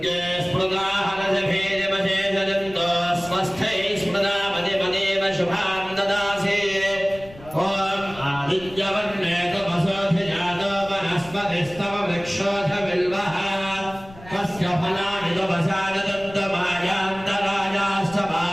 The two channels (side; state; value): left; noise; rumble, 19 dB below the sound